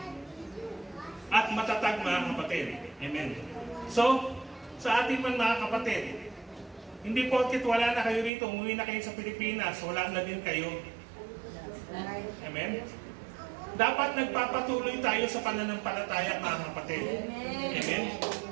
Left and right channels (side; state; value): left; drops out; at 8.3 s